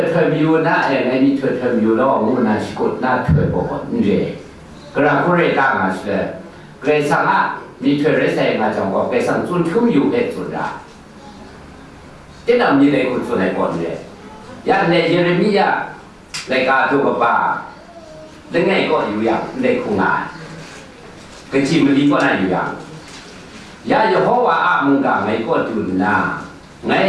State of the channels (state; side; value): identical; both; correlation 1.00